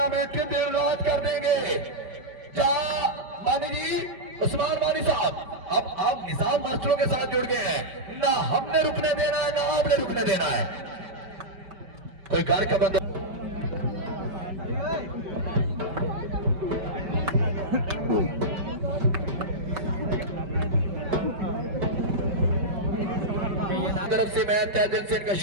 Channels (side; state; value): left; late; 5.2 ms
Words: के दिन रात कर देंगे। मानी जी, उस्मान मानी साहब, अब आप निजाम मास्टरों के साथ जुड़ गए हैं। ना हमने रुकने देना है ना आपने रुकने देना है। कोई घर का बंदा तरफ से मैं तहे दिल से इनका